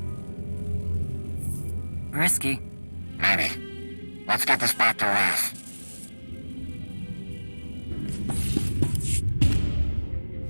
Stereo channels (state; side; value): inverted; both; correlation -1.00